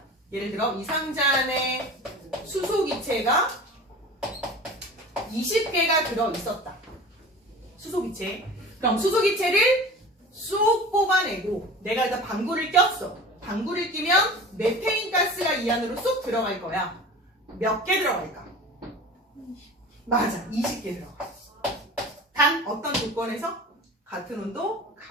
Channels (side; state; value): both; normal; correlation 0.37